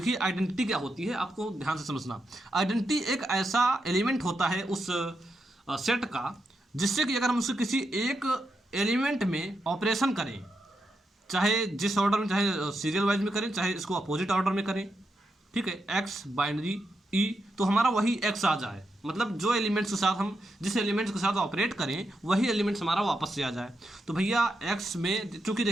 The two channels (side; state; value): both; normal; correlation 0.84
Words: आइडेंटिटी क्या होती है आपको ध्यान से समझना। आइडेंटिटी एक ऐसा एलिमेंट होता है उस सेट का जिससे कि अगर हम उसके किसी एक एलिमेंट में ऑपरेशन करें, चाहे जिस ऑर्डर में, चाहे सीरियल वाइज में करें, चाहे इसको अपोजिट ऑर्डर में करें, ठीक है, एक्स बाइनरी ई, तो हमारा वही एक्स आ जाए, मतलब जो एलिमेंट्स के साथ हम जिस एलिमेंट्स के साथ ऑपरेट करें वही एलिमेंट्स हमारा वापस से आ जाए। तो भैया एक्स में चूंकि